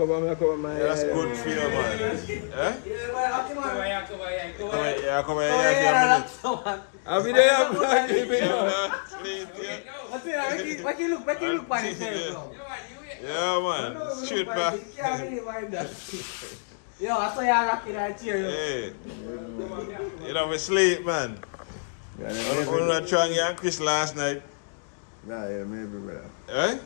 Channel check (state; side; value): silent; right; digital silence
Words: my Yeah, that's good for you, man. Eh? Yeah, come here. Come here, I'll be there, man. Sleep, yeah. Make you look by yourself. Yeah, man. Shoot back. Yo, I saw you rocking that chair. Hey. You know, we sleep, man. I'm not trying and Chris last night. Nah, yeah, maybe, brother. Eh?